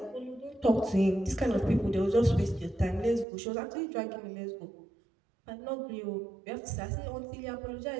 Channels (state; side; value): drops out; left; at 3.2 s